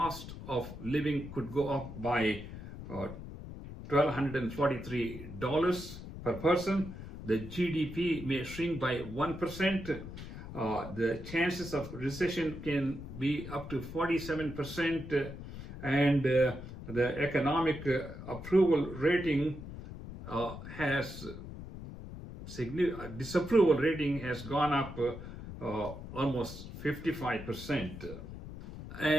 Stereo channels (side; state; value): left; noise; rumble, 11 dB below the sound